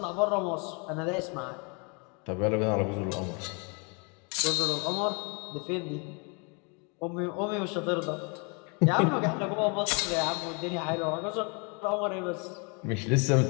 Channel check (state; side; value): quieter; right; 33.9 dB